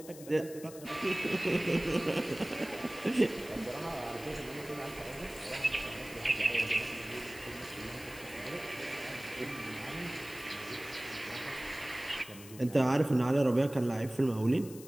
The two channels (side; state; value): left; noise; hiss, 17 dB below the sound